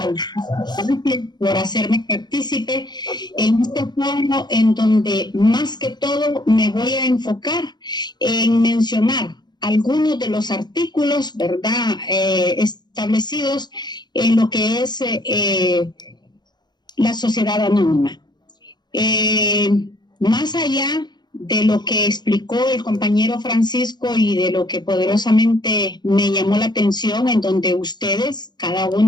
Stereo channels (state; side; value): late; right; 0.21 ms